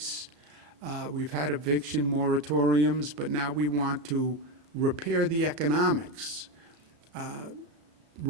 We've had eviction moratoriums, but now we want to repair the economics.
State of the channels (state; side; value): late; left; 34 ms